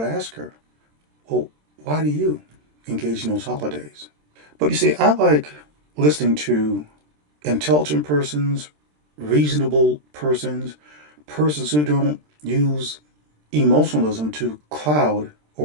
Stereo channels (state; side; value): late; left; 27 ms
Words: ask her, well, why do you engage in those holidays? But you see, I like listening to intelligent persons, reasonable persons, persons who don't use emotionalism to cloud